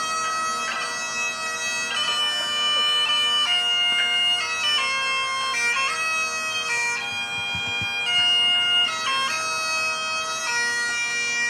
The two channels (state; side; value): identical; both; correlation 1.00